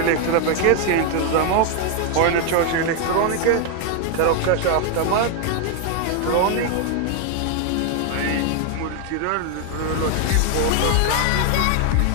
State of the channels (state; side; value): different; both; correlation 0.00